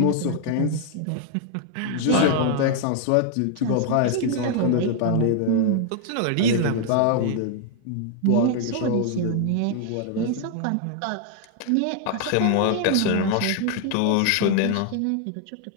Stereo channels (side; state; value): both; different; correlation 0.00